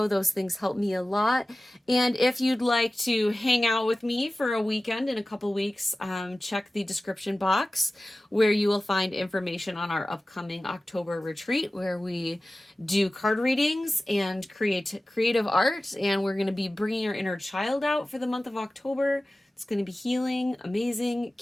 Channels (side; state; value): both; normal; correlation 0.96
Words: Those things help me a lot. And if you'd like to hang out with me for a weekend in a couple weeks, check the description box where you will find information on our upcoming October retreat, where we do card readings and creative art. And we're going to be bringing our inner child out for the month of October. It's going to be healing, amazing.